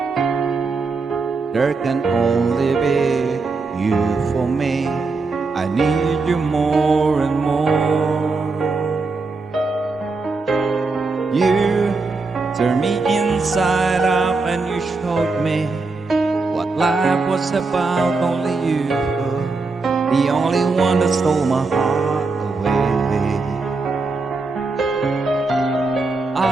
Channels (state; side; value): quieter; left; 3.9 dB